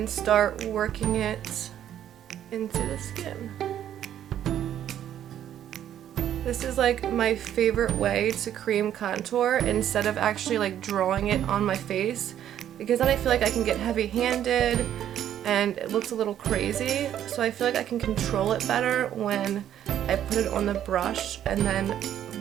start working it into the skin. This is like my favorite way to cream contour instead of actually like drawing it on my face, because then I feel like I can get heavy-handed and it looks a little crazy. So I feel like I can control it better when I put it on the brush and then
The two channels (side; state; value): left; quieter; 10.7 dB